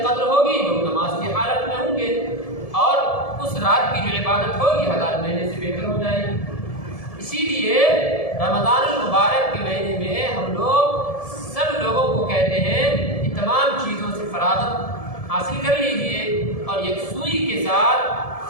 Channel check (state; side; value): late; right; 1.7 ms